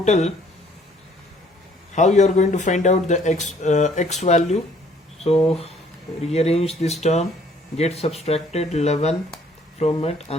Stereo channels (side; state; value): both; normal; correlation 0.60